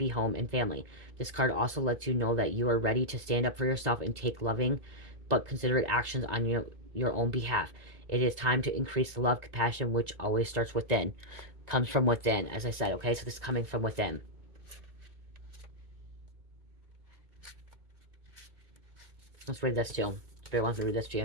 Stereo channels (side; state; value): left; late; 1.9 ms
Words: home and family. This card also lets you know that you are ready to stand up for yourself and take loving but considerate actions on your own behalf. It is time to increase the love, compassion, which always starts within. Comes from within, as I said, okay? So this is coming from within. Let's read this too. Spirit wants me to read this to